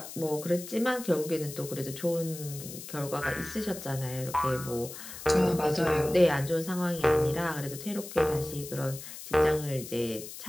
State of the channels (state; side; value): noise; left; hiss, 12 dB below the sound